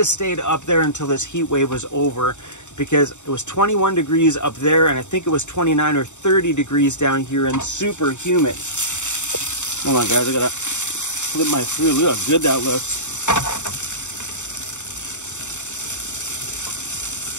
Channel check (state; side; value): late; right; 0.84 ms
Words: stayed up there until this heat wave was over, because it was 21 degrees up there and I think it was 29 or 30 degrees down here and super humid. Hold on guys, I gotta flip my food. Look how good that looks.